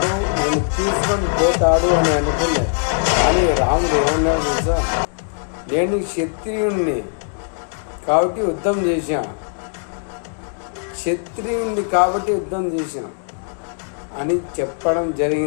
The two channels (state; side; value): silent; right; 60 dB below the other